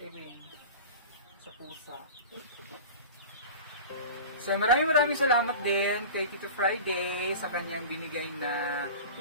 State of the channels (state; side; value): inverted; both; correlation -0.35